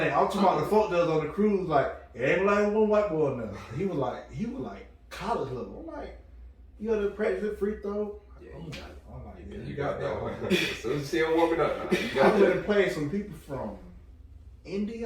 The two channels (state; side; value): identical; both; correlation 1.00